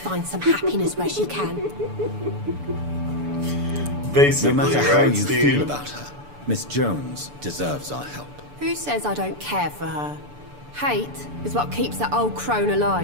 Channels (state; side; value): late; left; 6.9 ms